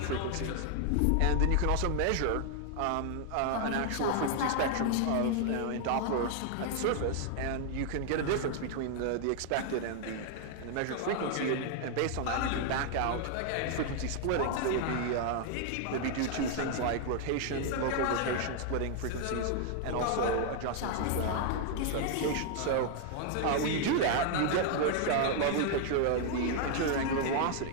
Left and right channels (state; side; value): different; both; correlation 0.00